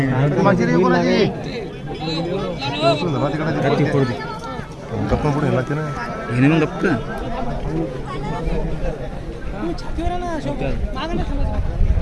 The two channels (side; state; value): both; identical; correlation 1.00